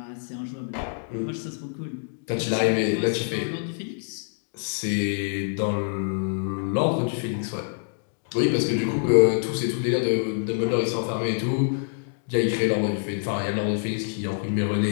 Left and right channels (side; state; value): right; silent; digital silence